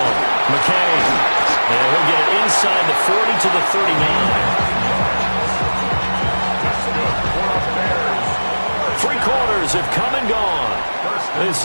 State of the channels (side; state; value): both; inverted; correlation -1.00